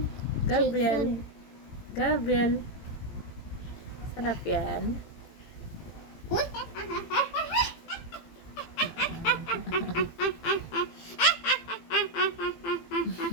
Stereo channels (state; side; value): late; right; 18 ms